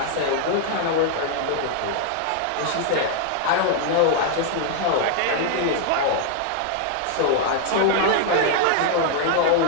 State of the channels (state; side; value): different; both; correlation 0.00